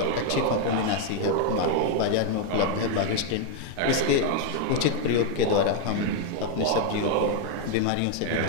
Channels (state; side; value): different; both; correlation 0.00